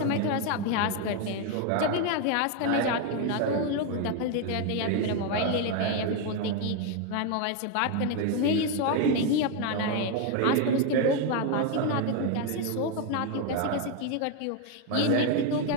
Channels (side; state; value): both; different; correlation 0.02